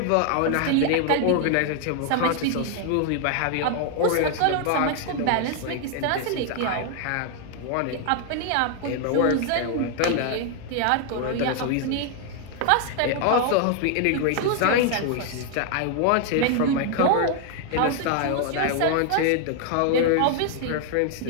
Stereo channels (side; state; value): both; different; correlation 0.00